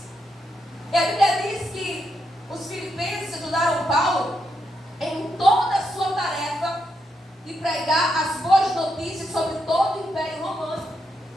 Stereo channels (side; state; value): both; normal; correlation 0.81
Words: E a Bíblia diz que os filipenses ajudaram Paulo em toda a sua tarefa de pregar as boas notícias sobre todo o Império Romano.